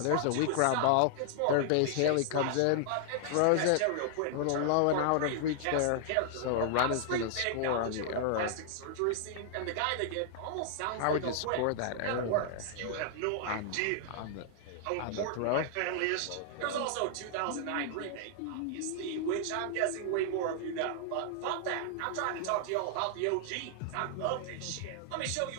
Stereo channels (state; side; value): different; both; correlation -0.01